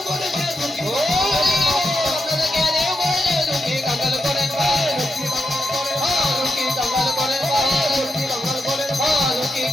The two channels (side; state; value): both; normal; correlation 0.85